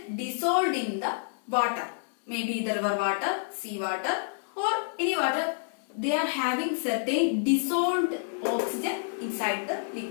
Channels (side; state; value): right; silent; digital silence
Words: dissolved in the water. Maybe the river water, sea water, or any water. They are having certain dissolved oxygen inside the